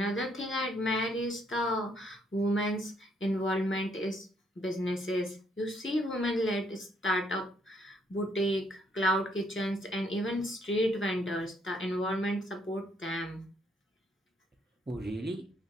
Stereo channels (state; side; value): normal; both; correlation 0.70